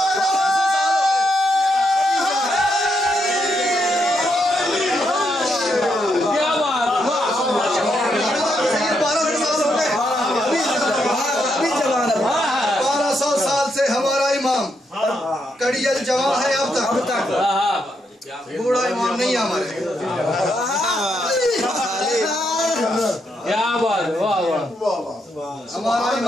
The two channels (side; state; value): both; normal; correlation 0.79